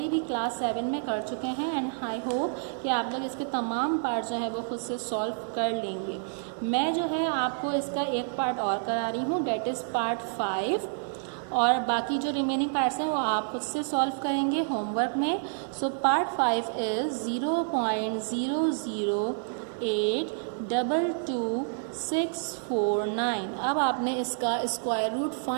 भी क्लास 7 में कर चुके हैं एंड आई होप होप कि आप लोग इसके तमाम पार्ट जो है वो खुद से सॉल्व कर लेंगे। मैं जो है आपको इसका एक पार्ट और करा रही हूँ, डेट इज़ पार्ट 5, और बाकी जो रिमेनिंग पार्ट्स हैं वो आप खुद से सॉल्व करेंगे होमवर्क में। So part 5 is 0.008222649। अब आपने इसका स्क्वायर रूट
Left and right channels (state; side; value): silent; left; digital silence